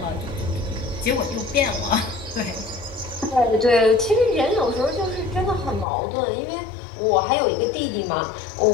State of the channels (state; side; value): drops out; right; at 5.9 s